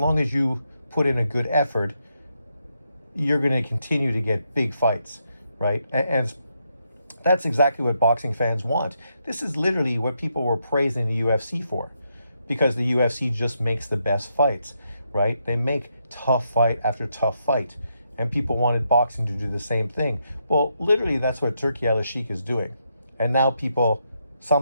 as you put in a good effort, you're going to continue to get big fights, right? And that's exactly what boxing fans want. This is literally what people were praising the UFC for, because the UFC just makes the best fights, right? They make tough fight after tough fight, and people wanted boxing to do the same thing. Well, literally, that's what Turki Al-Sheikh is doing. And now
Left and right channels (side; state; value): both; inverted; correlation -0.80